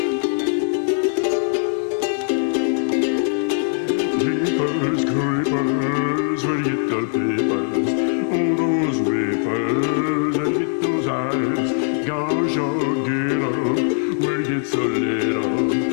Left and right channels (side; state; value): right; silent; 65 dB below the other